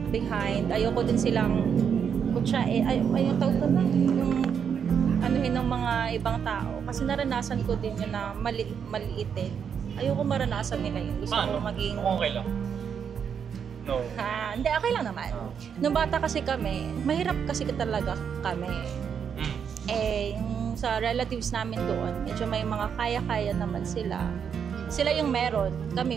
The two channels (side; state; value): left; quieter; 7.3 dB